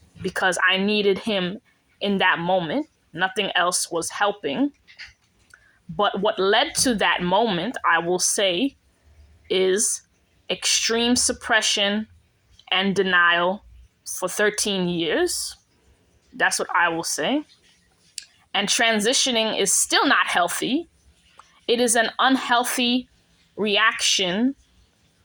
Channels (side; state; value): both; identical; correlation 1.00